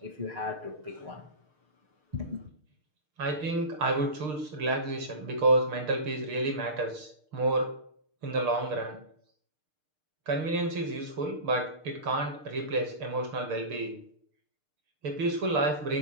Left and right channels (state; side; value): late; left; 6.6 ms